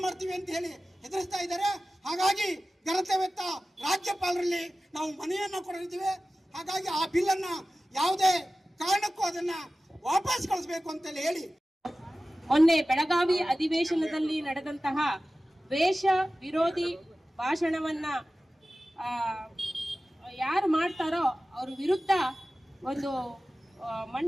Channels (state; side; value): normal; both; correlation 0.95